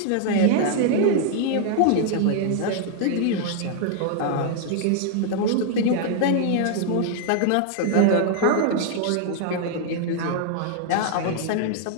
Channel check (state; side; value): different; both; correlation 0.00